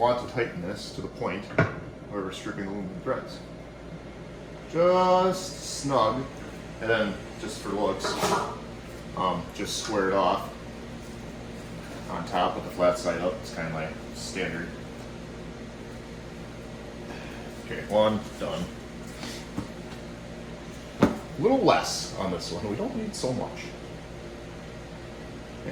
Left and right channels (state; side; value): identical; both; correlation 1.00